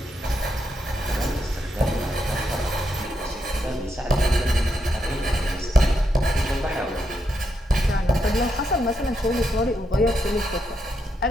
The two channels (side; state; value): both; normal; correlation 0.81